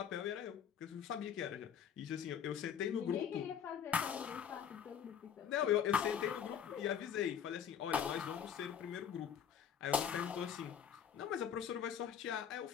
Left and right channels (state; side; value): quieter; right; 8.4 dB